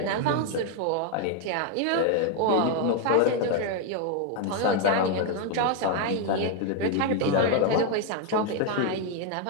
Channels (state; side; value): different; both; correlation 0.01